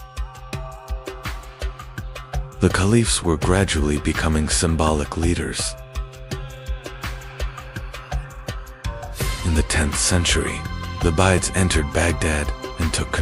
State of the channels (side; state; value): both; identical; correlation 1.00